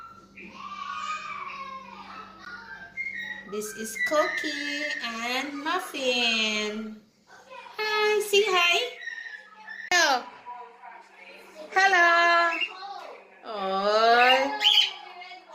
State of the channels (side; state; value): both; identical; correlation 1.00